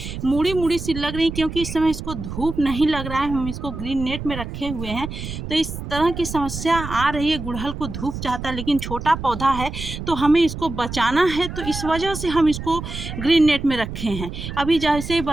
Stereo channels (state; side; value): noise; right; rumble, 8 dB below the sound